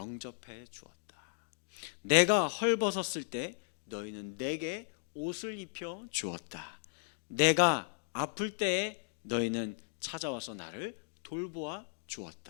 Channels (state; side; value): silent; right; digital silence